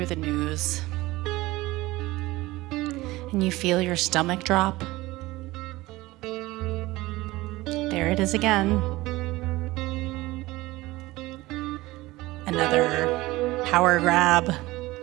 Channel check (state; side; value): quieter; left; 19.3 dB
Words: the news and you feel your stomach drop? There it is again. Another power grab.